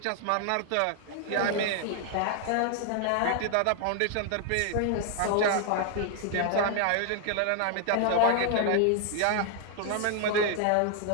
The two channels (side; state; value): both; different; correlation 0.00